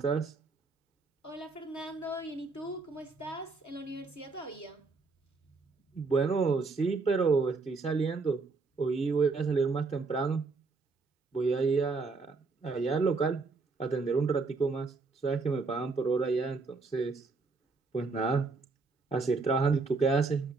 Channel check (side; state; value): left; quieter; 4.2 dB